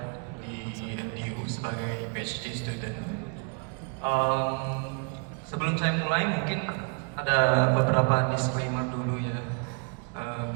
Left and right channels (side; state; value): left; quieter; 37.9 dB